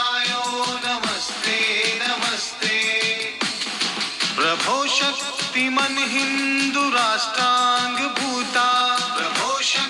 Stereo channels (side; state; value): both; identical; correlation 1.00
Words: नमस्ते नमस्ते, प्रभो शक्तिमन् हिन्दु राष्ट्रांग भूता, प्रभो